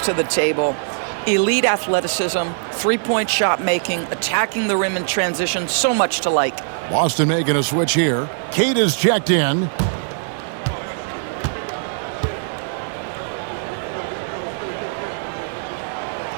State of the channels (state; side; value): silent; left; digital silence